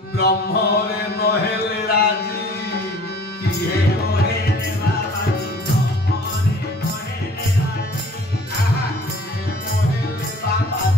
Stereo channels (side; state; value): both; normal; correlation 0.49